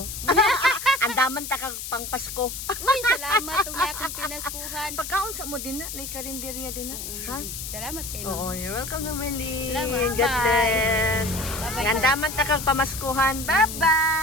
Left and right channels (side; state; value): left; noise; hiss, 7 dB below the sound